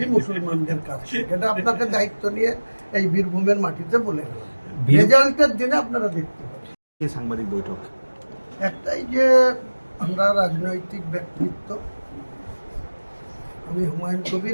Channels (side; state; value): both; inverted; correlation -1.00